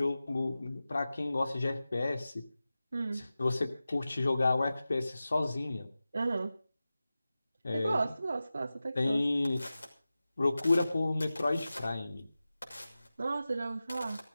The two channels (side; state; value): both; inverted; correlation -0.95